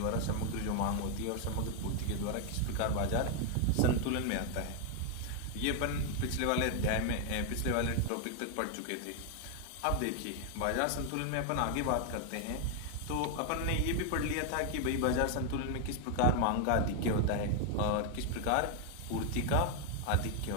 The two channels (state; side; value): different; both; correlation 0.00